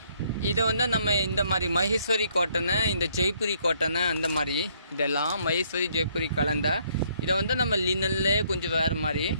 இதை வந்து நம்ம இந்த மாதிரி மகேஸ்வரி காட்டனு, இந்த ஜெய்ப்பூரி காட்டனு, அந்த மாதிரி இதெல்லாம் மகேஸ்வரி ஜெய்ப்பூரி கலந்த இதை வந்து நம்ம லீனன்லேயே கொஞ்சம் வேறு மாதிரி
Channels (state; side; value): inverted; both; correlation -0.67